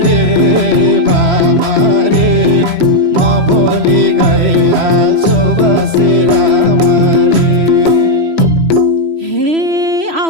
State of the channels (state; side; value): late; left; 3.0 ms